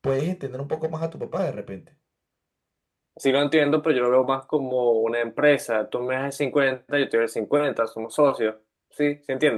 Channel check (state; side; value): identical; both; correlation 1.00